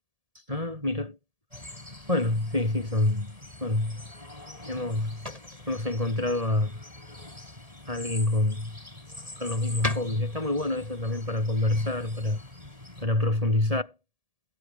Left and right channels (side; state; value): left; late; 1.7 ms